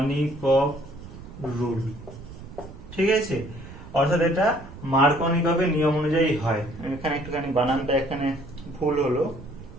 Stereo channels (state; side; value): noise; right; rumble, 15 dB below the sound